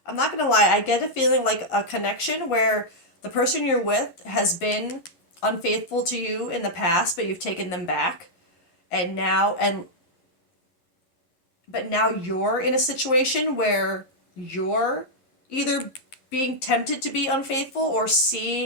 I'm not gonna lie, I get a feeling like a connection where the person you're with has been unfaithful to you in the past, but you've taken them back, and now, and but now you're in a situation where you're either being tempted to be unfaithful, or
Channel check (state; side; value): late; right; 11 ms